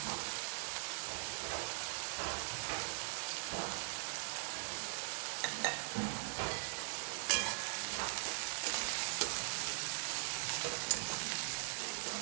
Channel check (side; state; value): left; silent; 50 dB below the other